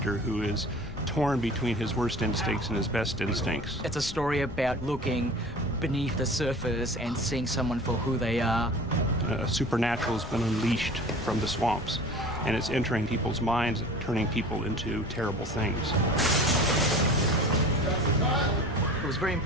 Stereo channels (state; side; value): noise; left; rumble, 12 dB below the sound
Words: who is torn between his worst instincts and his best instincts. It's a story about looking beneath the surface and seeing someone for who they are. Supernatural has been unleashed from the swamps, and it's entering people's minds, turning people into terrible things. It was very